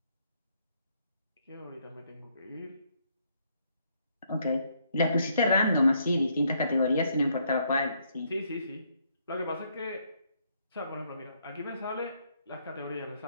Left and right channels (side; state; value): both; inverted; correlation -0.71